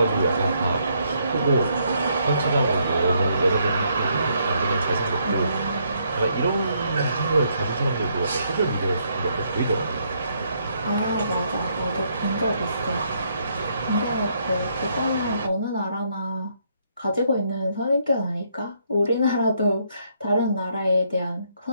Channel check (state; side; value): inverted; both; correlation -0.73